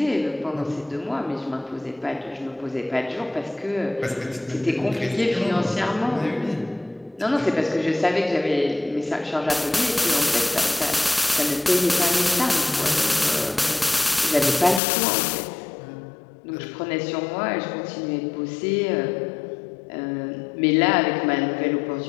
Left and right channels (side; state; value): right; drops out; at 14.8 s